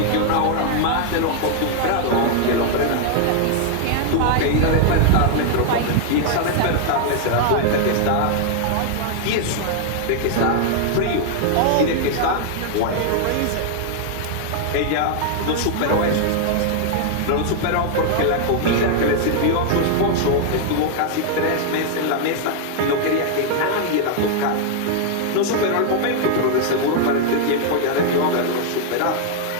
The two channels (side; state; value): both; different; correlation 0.00